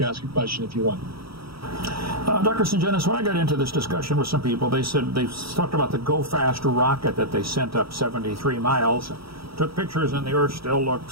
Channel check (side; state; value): left; late; 0.75 ms